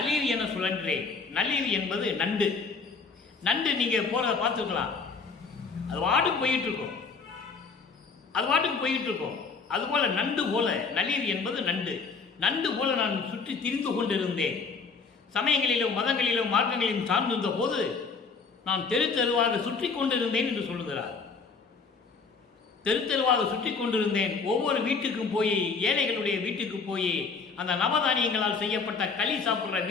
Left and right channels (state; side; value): quieter; right; 4.8 dB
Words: என சுழன்றேன். நளிர் என்பது நண்டு. நண்டு நீங்க போறதை பார்த்துக்கலாம், அது வாட்டுக்கு போயிட்டு இருக்கும், அது வாட்டுக்கு போயிட்டு இருக்கும். அதுபோல நண்டு போல, நளிர் என்பது நண்டு. நண்டு போல நான் சுற்றி திரிந்து கொண்டிருந்தேன். சமயங்களிலும் மதங்களிலும் மார்க்கங்களிலும் சார்ந்திருந்த போது நான் தெரு தெருவாக சுற்றி கொண்டிருந்தேன் என்று சொல்லுகிறார். தெரு தெருவாக சுற்றி கொண்டிருந்தேன். ஒவ்வொரு வீட்டுக்கும் போய், ஏழைகளுடைய வீட்டுக்கு போய், அந்த நவதானியங்களால் செய்யப்பட்ட களி சாப்பிட்ற